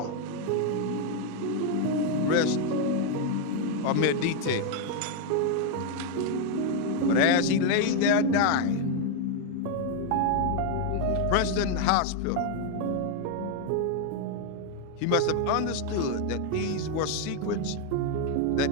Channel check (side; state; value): both; different; correlation 0.01